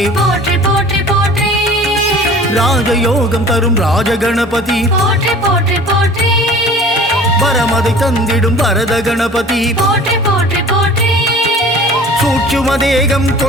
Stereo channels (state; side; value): normal; both; correlation 0.45